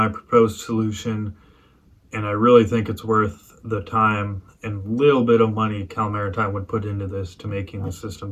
proposed solution, and I really think it's worth the time and little bit of money Cal Maritime would put into this to making the system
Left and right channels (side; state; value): both; identical; correlation 1.00